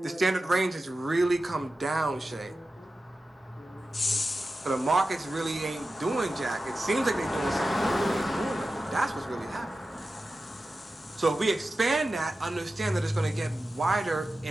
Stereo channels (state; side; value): normal; both; correlation 0.93